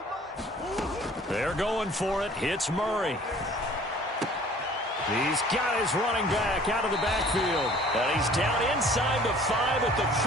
mine. They're going for it. Hits Murray. He's got his running back out of the backfield. And he's down inside the 5 at the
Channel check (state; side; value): normal; both; correlation 0.52